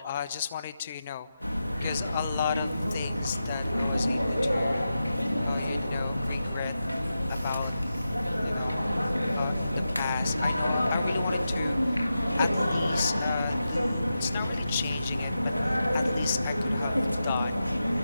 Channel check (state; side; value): inverted; both; correlation -0.90